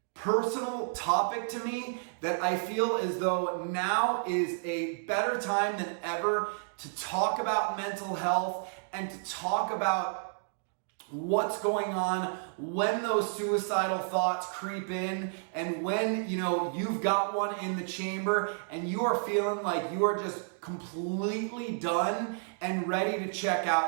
personal topic to me that I feel as though now is a better time than ever to talk about mental health and to talk about what's going on when those suicidal thoughts creep in and when you've got one in the chamber and you are feeling like you are just completely done and ready to check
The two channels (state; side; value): silent; left; digital silence